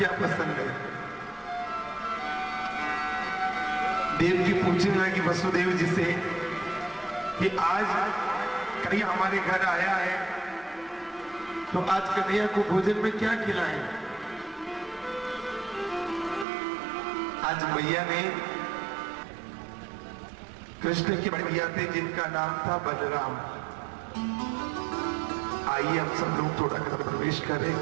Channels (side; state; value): left; drops out; at 16.4 s